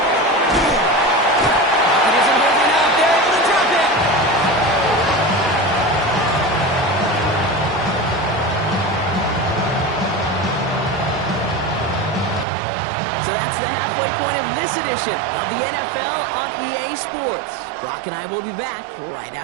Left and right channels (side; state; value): left; drops out; at 12.5 s